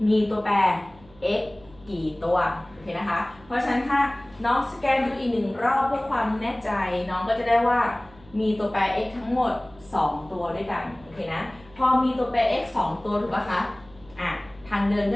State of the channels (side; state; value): right; noise; hum, 25 dB below the sound